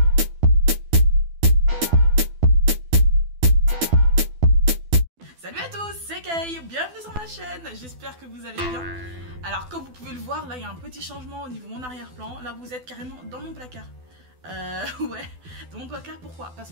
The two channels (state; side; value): late; left; 12 ms